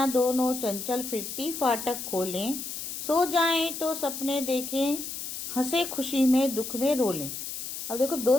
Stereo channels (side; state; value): left; noise; hiss, 7 dB below the sound